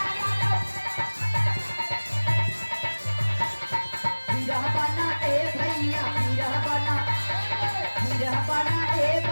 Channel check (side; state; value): both; inverted; correlation -1.00